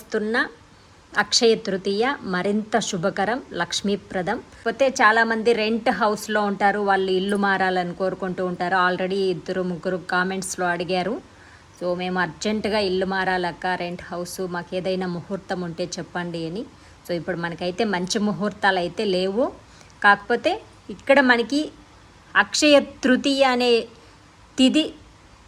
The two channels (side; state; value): both; identical; correlation 1.00